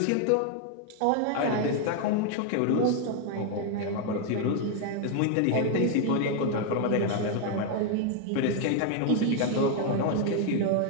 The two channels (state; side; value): different; both; correlation 0.01